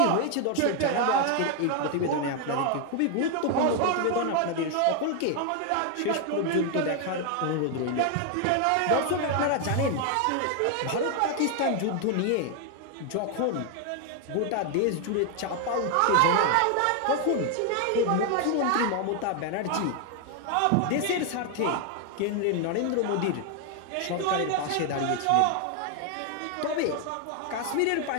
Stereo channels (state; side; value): different; both; correlation 0.00